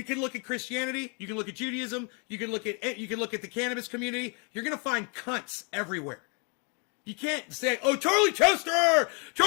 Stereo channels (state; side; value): quieter; right; 35.6 dB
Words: can look at Christianity, you can look at Judaism, you can look at the cannabis community. You're gonna find cunts everywhere. You can't say, "Oh, Charlie